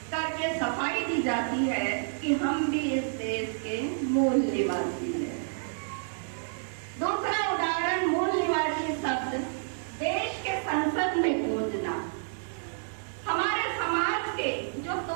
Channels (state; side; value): silent; left; digital silence